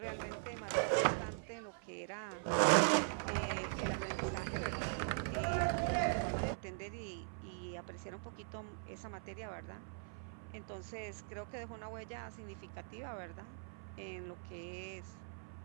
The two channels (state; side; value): silent; left; 50 dB below the other